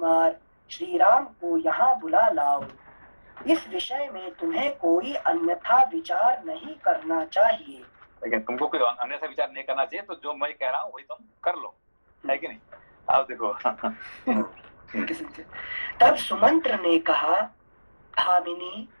श्री राम को यहाँ बुला लाओ। इस विषय में तुम्हें कोई अन्यथा विचार नहीं करना चाहिए। लेकिन तुमको कोई अन्यथा विचार नहीं करना चाहिए, तो जो मैं कह रहा हूँ वही तुम कर लो, है कि नहीं? आप देखो। तब सुमंत्र ने कहा, भामिनी,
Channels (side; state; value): both; inverted; correlation -1.00